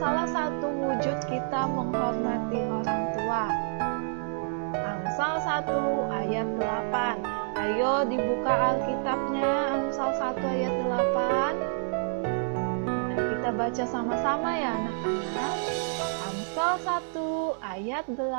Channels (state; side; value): silent; left; 59 dB below the other